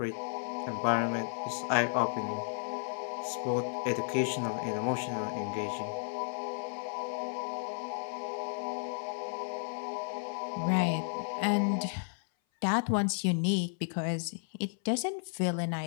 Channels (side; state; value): right; silent; 56 dB below the other